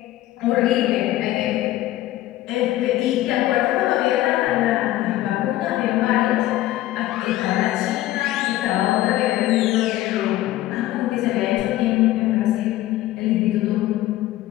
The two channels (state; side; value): quieter; right; 15.4 dB